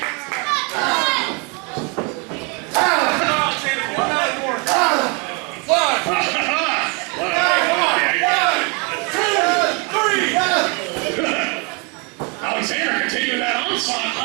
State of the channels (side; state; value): left; quieter; 32.4 dB